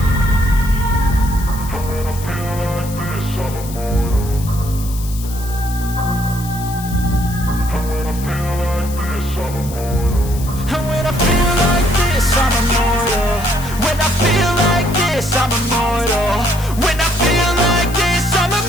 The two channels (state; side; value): noise; left; hiss, 14 dB below the sound